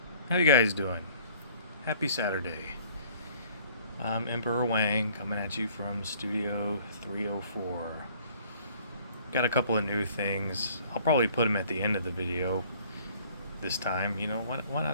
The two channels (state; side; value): inverted; both; correlation -0.55